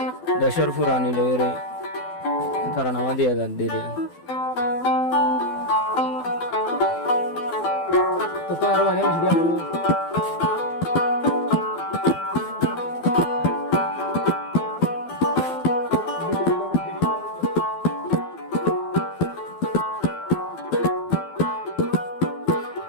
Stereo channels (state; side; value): late; right; 12 ms